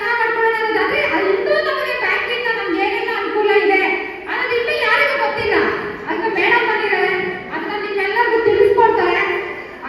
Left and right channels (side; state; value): both; identical; correlation 1.00